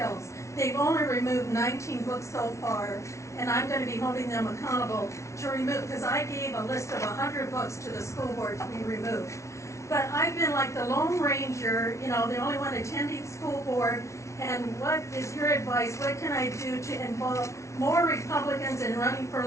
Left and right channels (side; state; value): right; late; 0.14 ms